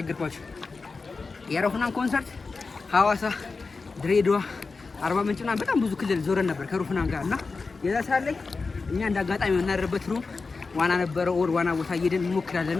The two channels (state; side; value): quieter; right; 4.2 dB